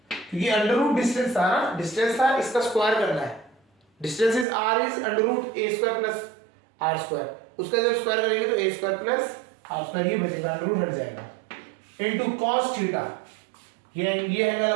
क्योंकि अंडर रूट डिस्टेंस था ना, डिस्टेंस था, इसका स्क्वायर करना है, distance is r is under root a square plus r square, उसका जब स्क्वायर करेंगे तो a square plus r square ये बचेगा, अंडर रूट हट जाएगा, इनटू cos थीटा, ये एंगल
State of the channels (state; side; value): drops out; left; at 4.5 s